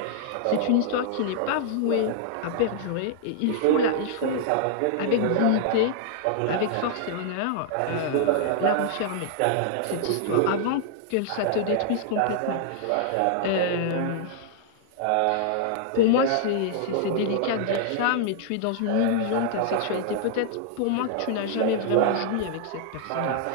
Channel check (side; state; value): both; different; correlation -0.01